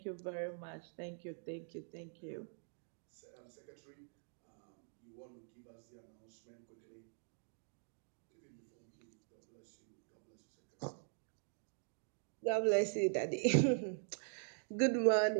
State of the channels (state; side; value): silent; left; digital silence